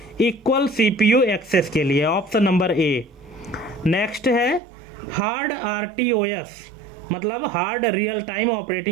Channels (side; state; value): left; drops out; at 4.6 s